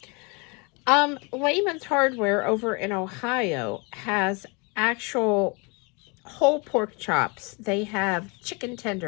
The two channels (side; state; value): right; quieter; 30.8 dB